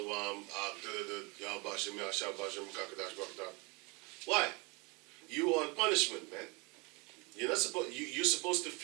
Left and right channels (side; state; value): left; quieter; 28.5 dB